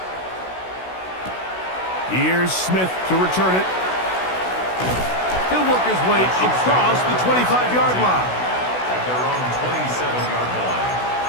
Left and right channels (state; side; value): late; right; 16 ms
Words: Here's Smith to return it. He'll work his way across the 25-yard line. At their own 27-yard line.